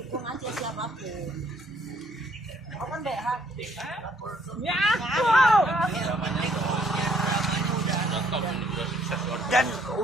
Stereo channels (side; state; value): both; normal; correlation 0.66